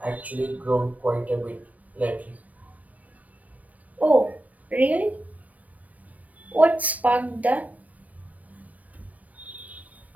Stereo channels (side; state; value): left; late; 0.071 ms